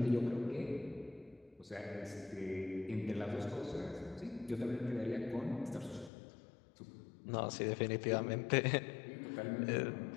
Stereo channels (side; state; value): right; drops out; at 6.1 s